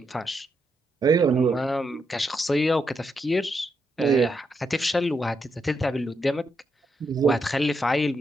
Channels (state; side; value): normal; both; correlation 0.81